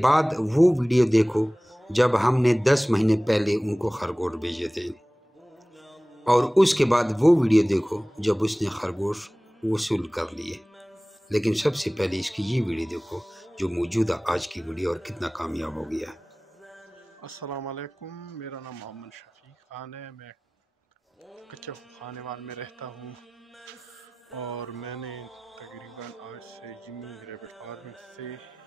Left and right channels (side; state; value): both; normal; correlation 0.98